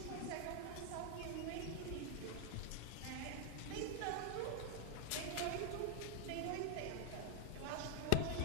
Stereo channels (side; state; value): both; different; correlation 0.01